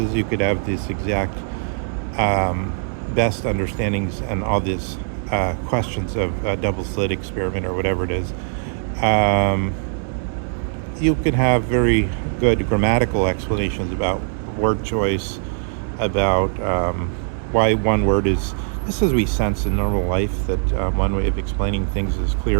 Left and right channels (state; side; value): silent; left; 65 dB below the other